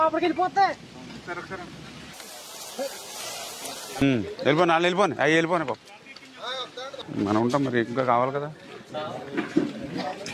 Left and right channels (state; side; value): identical; both; correlation 1.00